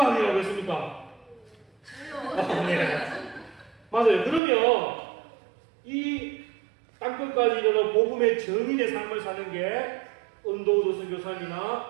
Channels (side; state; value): left; drops out; at 4.4 s